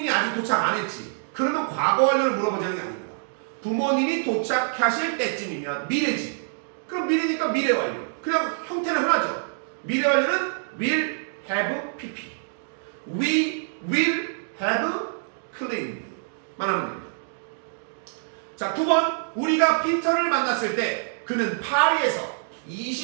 아직 도착 안 했지. 그러면 과거 완료를 물어보자는 게 아닙니다. 부모님이 도착하실 때쯤이면 미래지. 그럼 미래니까 미래 완료. 그냥 형태는 하나죠. 미래 완료는 will have pp. We will have cleaned 만 하면 됩니다. 자, 9번. 우리가 피터를 만났을 때 그는 파리에서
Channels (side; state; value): left; silent; digital silence